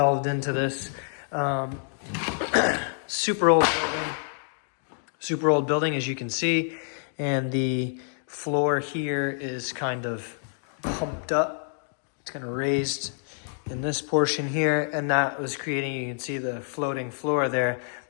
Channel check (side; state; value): right; silent; digital silence